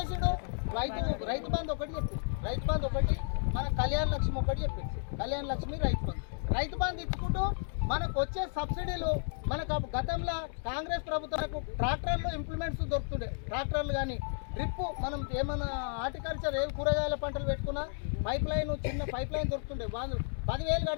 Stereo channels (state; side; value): silent; right; digital silence